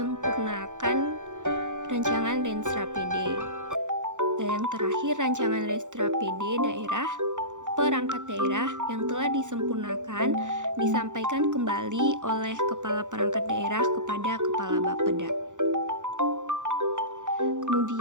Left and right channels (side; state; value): left; late; 0.86 ms